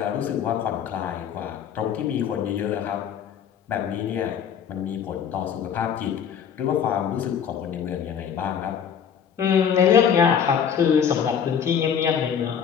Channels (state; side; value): quieter; right; 7.9 dB